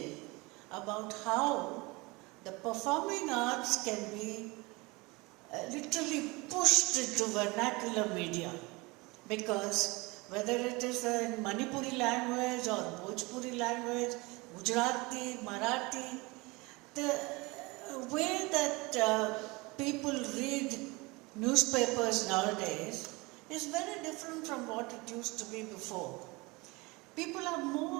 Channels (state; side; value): quieter; left; 24.6 dB